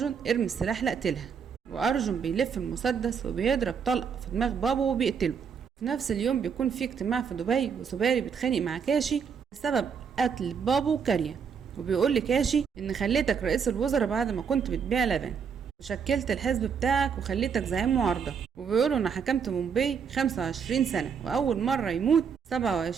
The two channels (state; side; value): quieter; left; 6.6 dB